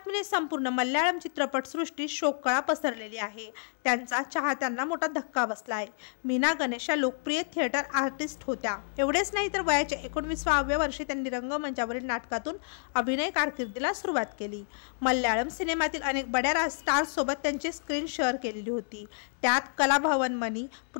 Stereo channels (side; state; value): right; silent; 58 dB below the other